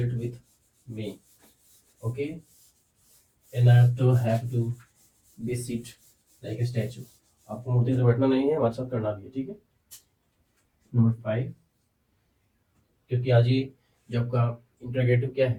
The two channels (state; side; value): identical; both; correlation 1.00